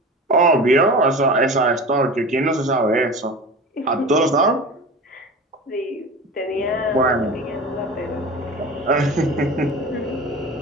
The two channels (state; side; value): normal; both; correlation 0.33